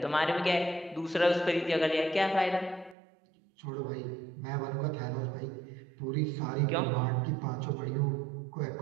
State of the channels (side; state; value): left; drops out; at 3.0 s